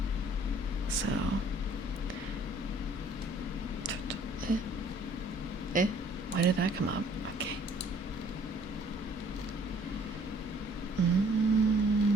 So Why did that come up? Okay.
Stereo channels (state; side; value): normal; both; correlation 0.58